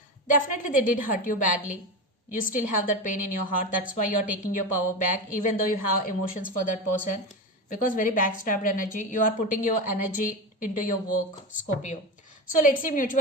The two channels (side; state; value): both; normal; correlation 0.20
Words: definitely they did hurt you badly. You still have that pain in your heart. That's why you're taking your power back, even though you have emotions for that person. Because very backstabbed energy. You are putting your energy into your work, Scorpio. So let's see